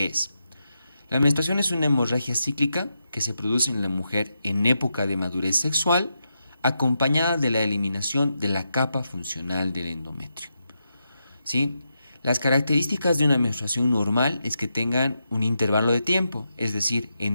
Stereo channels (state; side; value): inverted; both; correlation -0.86